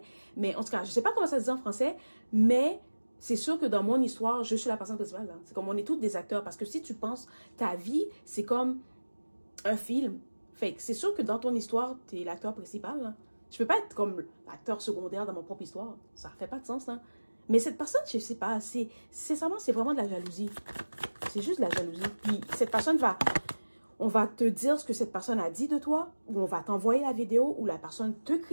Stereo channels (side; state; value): both; inverted; correlation -1.00